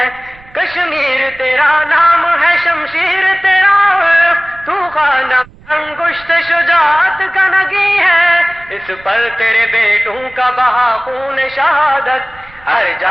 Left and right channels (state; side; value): noise; right; rumble, 24 dB below the sound